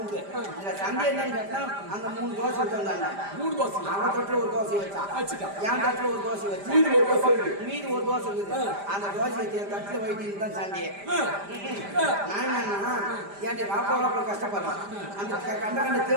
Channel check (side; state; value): left; late; 5.0 ms